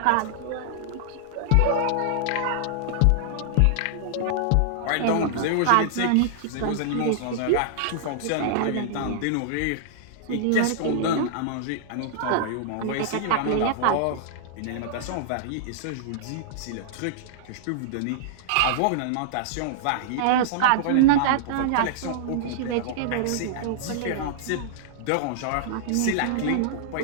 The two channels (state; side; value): different; both; correlation -0.01